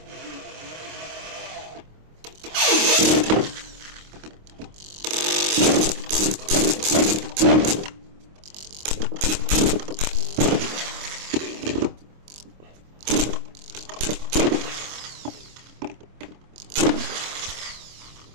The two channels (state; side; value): late; left; 26 ms